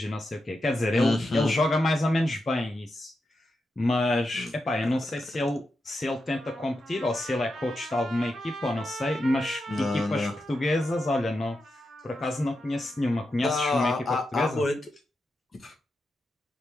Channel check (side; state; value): both; normal; correlation 0.88